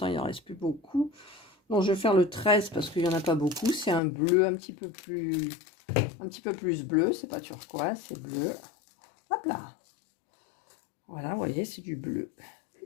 il n'en reste plus beaucoup. Donc, je vais faire le 13 parce qu'il n'y en a pas beaucoup. C'est un bleu un petit peu plus bleu. C'est pas turquoise, c'est bleu. Hop là. Voilà, vous voyez, c'est du bleu.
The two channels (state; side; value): drops out; right; at 4.0 s